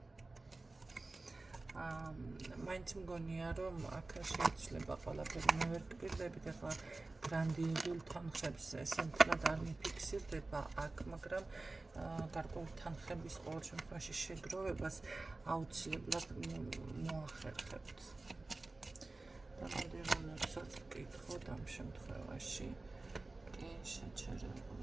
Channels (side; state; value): left; quieter; 3.2 dB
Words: მაინც მგონია, რომ აქ შეიძლება ყველაფერი მე ვერ გპირდებით, ახლა გრანდიოზულ თანხებს ესე მთლად არ მიფიქსირდება აქ, მაგრამ გარკვეული თანხების ყოველ შემთხვევაში შეგროვებას აუცილებლად მოახერხებთ. და მოდი რომელსაც ვკითხოთ ამ შემთხვევაში, კი